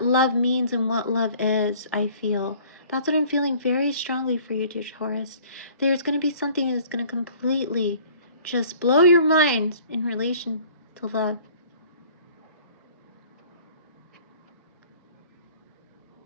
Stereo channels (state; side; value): inverted; both; correlation -0.51